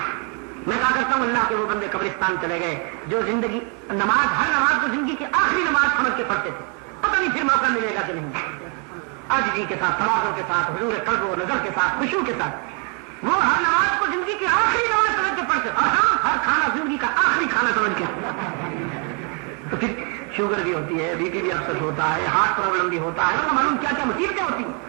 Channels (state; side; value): quieter; left; 37.3 dB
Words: میں کہا کرتا ہوں اللہ کے وہ بندے قبرستان چلے گئے جو زندگی ہر نماز کو زندگی کی آخری نماز سمجھ کے پڑھتے تھے، پتہ نہیں پھر موقع ملے گا کہ نہیں. عاجزی کے ساتھ، تواضع کے ساتھ، حضور قلب و نظر کے ساتھ، خشوع کے ساتھ وہ ہر نماز کو زندگی کی آخری نماز سمجھ کے پڑھتے. اور ہاں، ہر کھانا زندگی کا آخری کھانا سمجھ کے. تو پھر شوگر بھی ہوتی ہے، بی پی بھی اکثر ہوتا ہے، ہارٹ پرابلم بھی ہوتا ہے، معلوم کیا کیا مصیبتیں ہوتی ہیں.